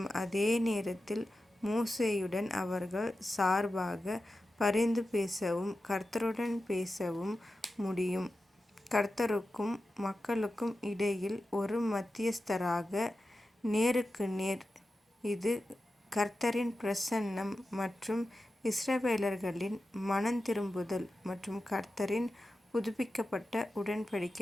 அதே நேரத்தில் மோசேயுடன் அவர்கள் சார்பாக பரிந்து பேசவும் கர்த்தருடன் பேசவும் முடியும். கர்த்தருக்கும் மக்களுக்கும் இடையில் ஒரு மத்தியஸ்தராக நேருக்கு நேர். இது கர்த்தரின் பிரசன்னம் மற்றும் இஸ்ரவேலர்களின் மனந்திரும்புதல் மற்றும் கர்த்தரின் புதுப்பிக்கப்பட்ட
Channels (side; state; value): both; normal; correlation 0.92